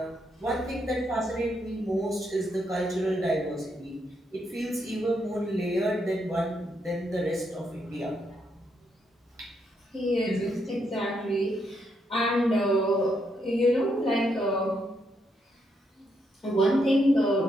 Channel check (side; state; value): both; normal; correlation 0.78